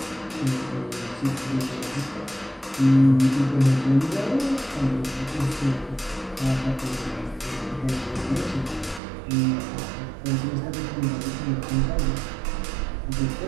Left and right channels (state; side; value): drops out; left; at 9.0 s